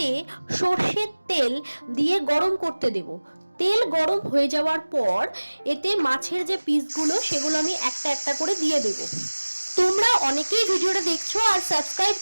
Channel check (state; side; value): inverted; both; correlation -1.00